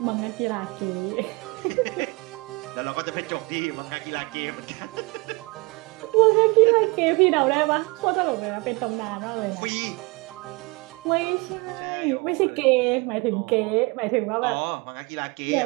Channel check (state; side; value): quieter; left; 27.1 dB